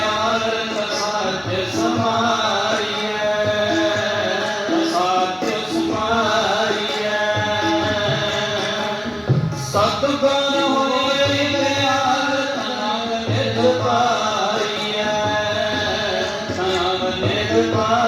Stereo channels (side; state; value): both; identical; correlation 1.00